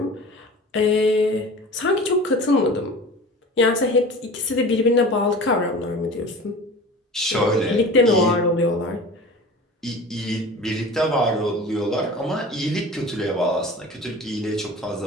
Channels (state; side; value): normal; both; correlation 0.38